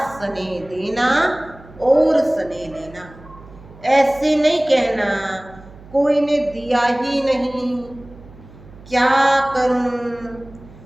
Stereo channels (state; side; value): noise; right; hum, 21 dB below the sound